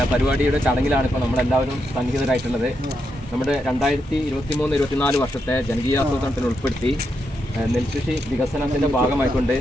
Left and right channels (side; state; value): both; normal; correlation 0.83